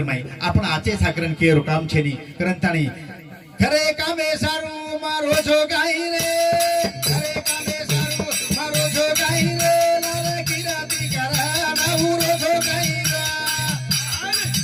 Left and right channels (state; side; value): identical; both; correlation 1.00